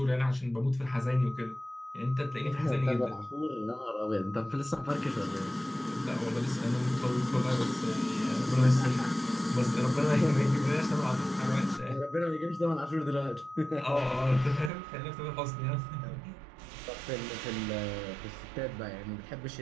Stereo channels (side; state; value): left; drops out; at 14.7 s